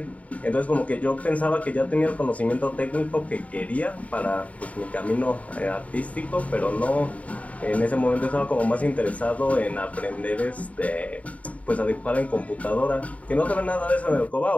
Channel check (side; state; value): right; late; 0.068 ms